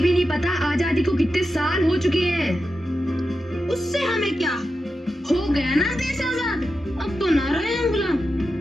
भी नहीं पता आजादी को कितने साल हो चुके हैं? उससे हमें क्या, हो गया ना देश आजाद, अब तो ना रहे हम गुलाम।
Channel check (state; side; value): normal; both; correlation 0.90